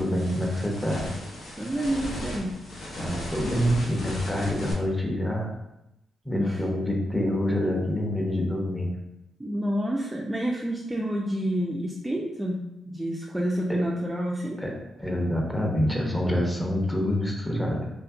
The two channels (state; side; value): normal; both; correlation 0.87